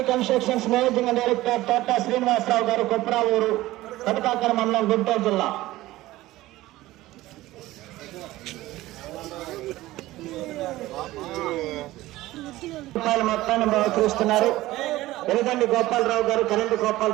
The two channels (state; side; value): quieter; left; 17.1 dB